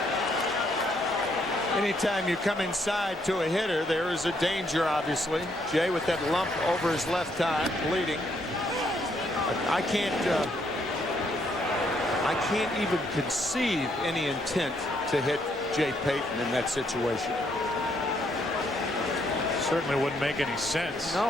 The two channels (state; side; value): normal; both; correlation 0.72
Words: Anytime you come inside to a hitter, there is a danger, obviously. Jay with that lump over his left eye, bleeding. I can't even conceive any intent to hit Jay Payton in that situation. Certainly wouldn't make any sense.